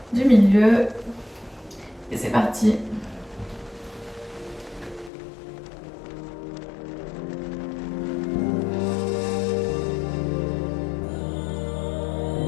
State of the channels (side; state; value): right; drops out; at 5.1 s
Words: du milieu. Et c'est parti.